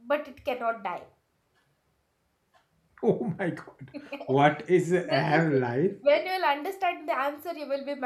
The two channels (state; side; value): identical; both; correlation 1.00